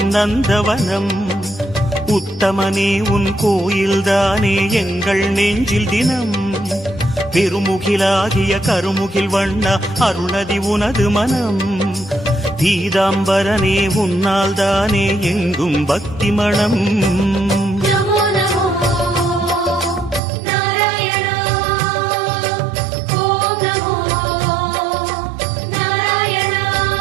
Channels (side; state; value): left; drops out; at 20.2 s